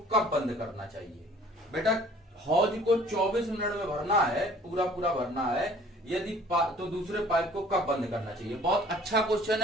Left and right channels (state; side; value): normal; both; correlation 0.52